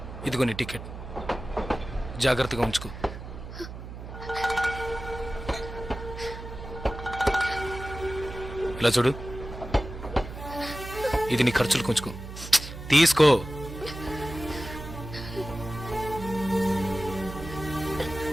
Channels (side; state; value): right; noise; hum, 11 dB below the sound